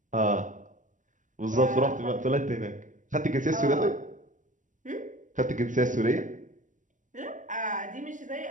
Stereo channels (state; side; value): late; left; 0.37 ms